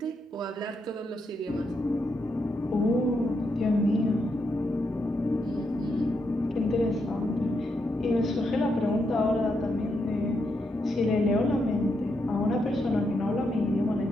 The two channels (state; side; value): normal; both; correlation 0.81